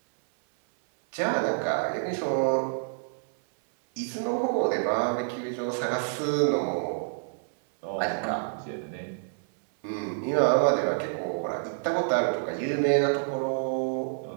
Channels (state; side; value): silent; left; 59 dB below the other